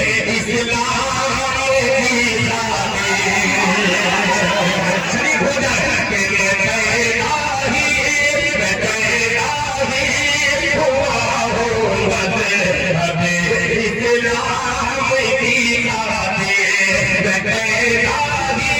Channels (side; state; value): both; identical; correlation 1.00